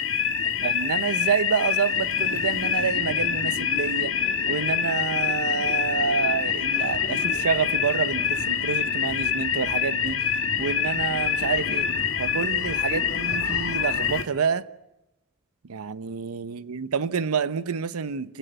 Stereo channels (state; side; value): normal; both; correlation -0.19